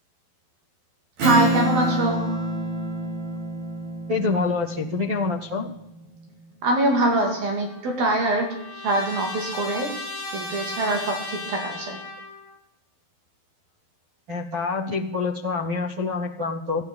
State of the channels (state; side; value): late; left; 12 ms